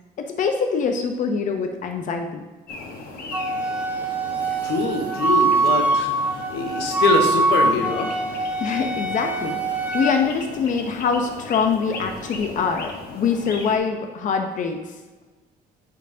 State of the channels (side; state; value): both; normal; correlation 0.42